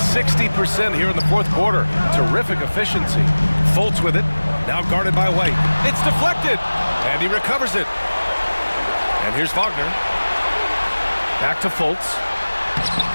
here in the 4th quarter. Terrific efficiency. Fultz with it. Now guarded by White. It's deflected. And he recovers it. And here's Wagner. Back to Fultz.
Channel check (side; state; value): both; inverted; correlation -1.00